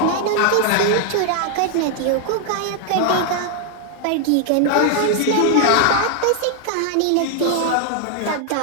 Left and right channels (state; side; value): different; both; correlation 0.00